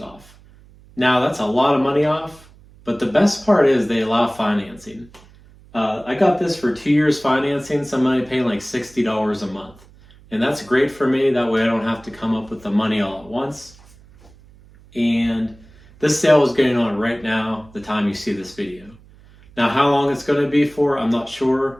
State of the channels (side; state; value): right; noise; hum, 25 dB below the sound